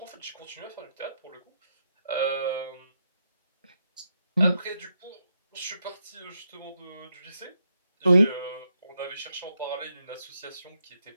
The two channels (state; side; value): inverted; both; correlation -0.82